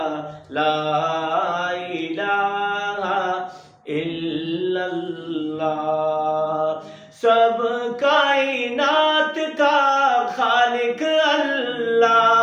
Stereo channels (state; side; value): identical; both; correlation 1.00